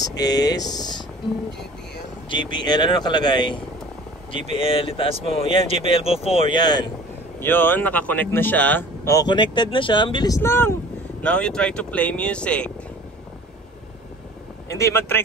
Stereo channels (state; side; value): normal; both; correlation 0.45